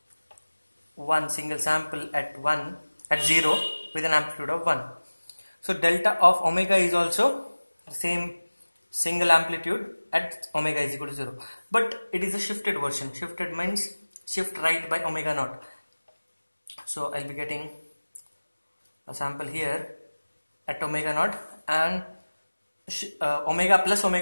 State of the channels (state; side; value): inverted; both; correlation -1.00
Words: one single sample at 0 with an amplitude of 1. So delta of omega is also the same single amplitude at omega is equal to 0, but it is a shifted version. Shifted means shift right by omega naught. So I'll be getting a sample here at omega naught, and omega plus